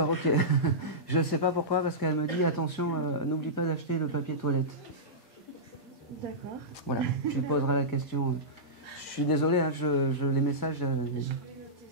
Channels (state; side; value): normal; both; correlation -0.15